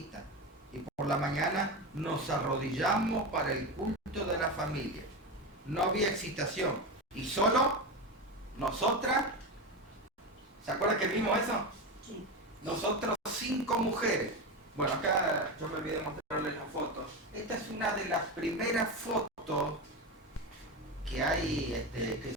y por la mañana nos arrodillamos para el culto de la familia. No había excitación y solo nosotras. ¿Se acuerdan que vimos eso? Sí. Nosotros 5 mujeres. Bueno, acá yo me olvidé de mostrarles las fotos. Esta es una de las primeras fotos que hay, que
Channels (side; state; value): both; normal; correlation 0.19